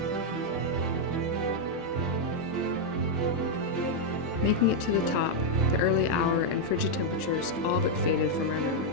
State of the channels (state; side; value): normal; both; correlation -0.02